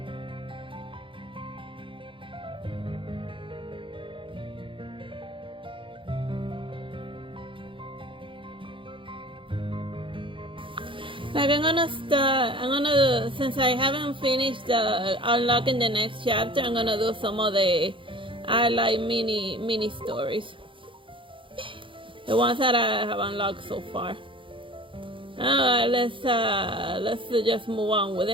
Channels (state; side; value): late; left; 0.25 ms